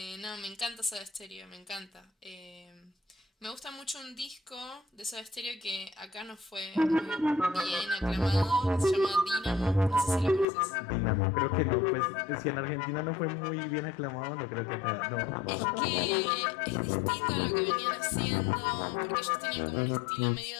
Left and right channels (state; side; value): drops out; right; at 10.5 s